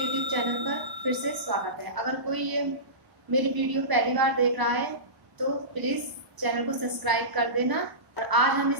चैनल पर फिर से स्वागत है। अगर कोई ये मेरी वीडियो पहली बार देख रहा है तो प्लीज़ चैनल को सब्सक्राइब कर देना। और आज हम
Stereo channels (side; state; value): left; late; 1.0 ms